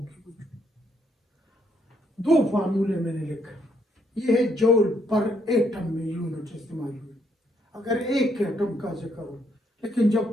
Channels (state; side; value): normal; both; correlation 0.73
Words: दो फार्मूले मैंने लिखे, ये है जूल पर एटम में यूनिट इस्तेमाल हुई अगर एक एटम का जिक्र हो, लेकिन